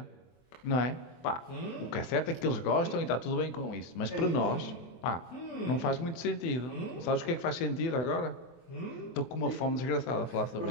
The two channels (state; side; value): late; right; 24 ms